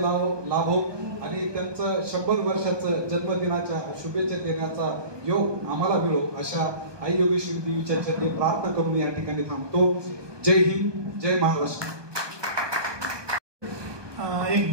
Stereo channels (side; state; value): left; late; 1.2 ms